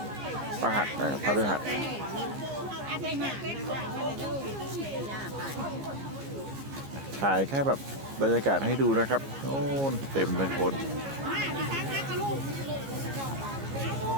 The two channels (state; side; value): late; left; 15 ms